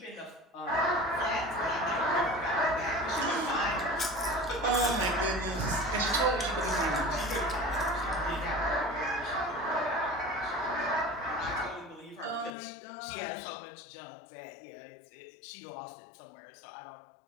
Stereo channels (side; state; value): right; drops out; at 12.6 s